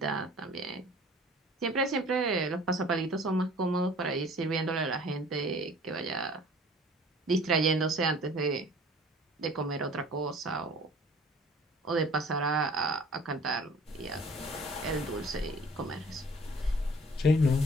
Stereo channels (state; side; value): normal; both; correlation 0.50